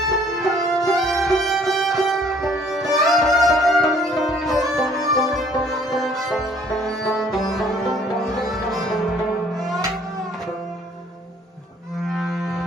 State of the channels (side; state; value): both; normal; correlation 0.59